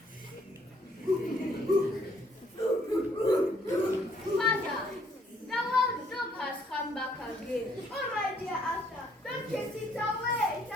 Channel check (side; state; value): both; normal; correlation 0.67